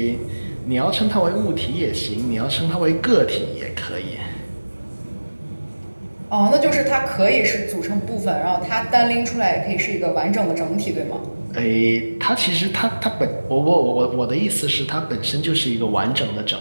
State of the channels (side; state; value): both; inverted; correlation -1.00